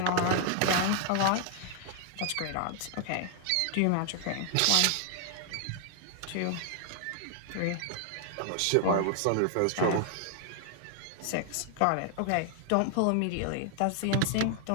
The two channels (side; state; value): both; different; correlation 0.00